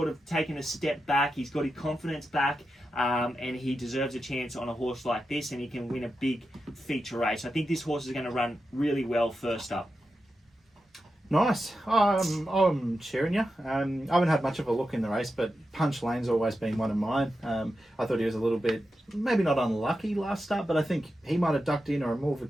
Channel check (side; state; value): both; normal; correlation 0.90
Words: of taken a step back. He's got his confidence back. And he deserves a chance on a horse like this, and he can win a big feature race. I think this horse is going to run really well first up. Nice. I'm cheering you. I haven't had much of a look in the race, but Punch Lane's always been one of mine. I thought he was a little bit, maybe not unlucky last start, but I think he might have ducked in, or a more